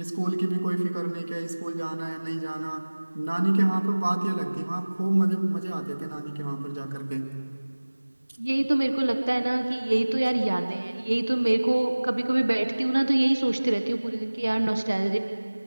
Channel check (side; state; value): both; inverted; correlation -1.00